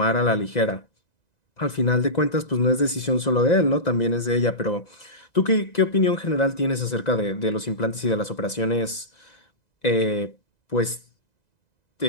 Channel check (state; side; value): late; right; 2.0 ms